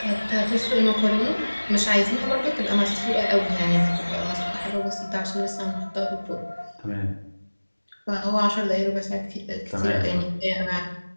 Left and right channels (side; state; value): both; inverted; correlation -1.00